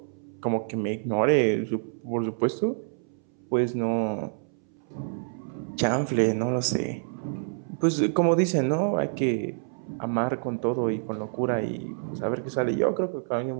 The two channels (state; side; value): silent; left; 60 dB below the other